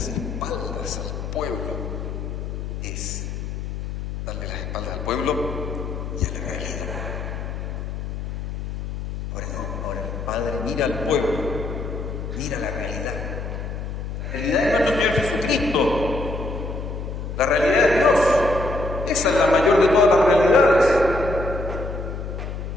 espaldas al pueblo es darle las espaldas al pueblo y a la realidad. Ahora no, ahora el Padre mira al pueblo, mira la realidad. La realidad es nuestro Señor Jesucristo, la realidad de Dios. Esa es la mayor de todas las realidades.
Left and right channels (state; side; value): noise; left; hum, 6 dB below the sound